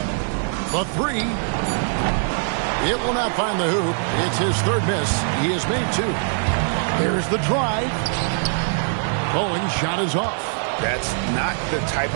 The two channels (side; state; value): left; silent; 58 dB below the other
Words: The 3. It will not find the hoop. It's his 3rd miss. He has made 2. There's the drive. Bowen's shot is off. That's not the type